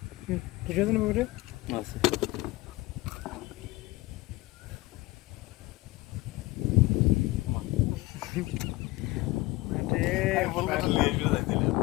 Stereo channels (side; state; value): right; quieter; 20.0 dB